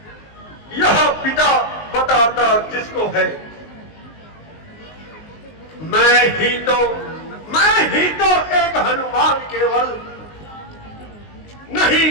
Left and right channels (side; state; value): right; late; 19 ms